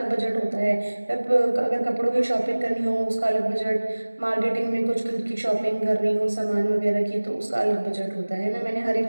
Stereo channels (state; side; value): inverted; both; correlation -1.00